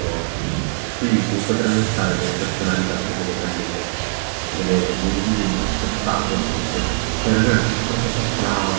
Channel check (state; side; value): silent; left; 60 dB below the other